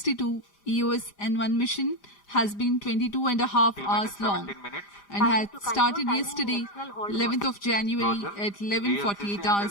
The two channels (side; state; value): right; late; 5.0 ms